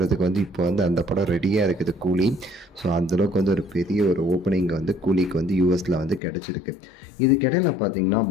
வந்து இப்போ வந்து அந்த படம் ரெடியாக இருக்குது கூலி. ஸோ அந்தளவுக்கு வந்து ஒரு பெரிய ஒரு ஓப்பனிங் வந்து கூலிக்கு வந்து யூஎஸில் வந்து கிடச்சிருக்கு. இதுக்கிடையில் பார்த்தீங்கன்னா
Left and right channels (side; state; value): right; drops out; at 6.2 s